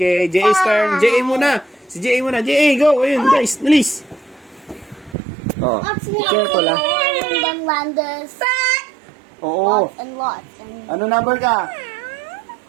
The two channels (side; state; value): left; drops out; at 5.2 s